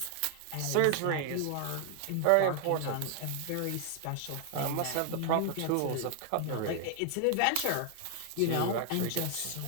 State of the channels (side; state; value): both; different; correlation 0.00